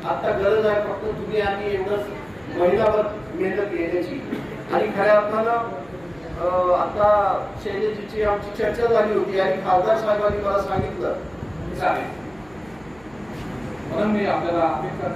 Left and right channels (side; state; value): right; noise; hum, 26 dB below the sound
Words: आता गरज आहे फक्त तुम्ही आणि एवढंच महिलावर मेहनत घेण्याची. आणि खऱ्या अर्थानं आता शैलेजीची आमची चर्चा झाली होती आणि खासदार साहेबांनी मला सांगितलं म्हणून मी आपल्याला अपेक्षा